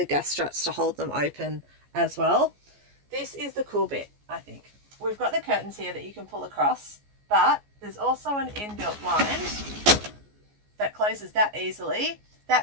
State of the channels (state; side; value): late; left; 14 ms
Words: gas struts to hold them open as well. This is the cool bit, I think. We've got the curtains here that you can pull across, but there's also an inbuilt blind that closes that easily.